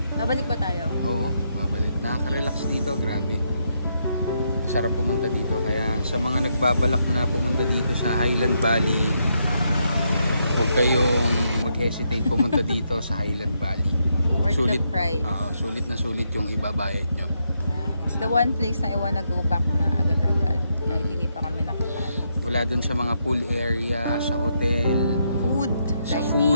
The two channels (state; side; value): inverted; both; correlation -0.79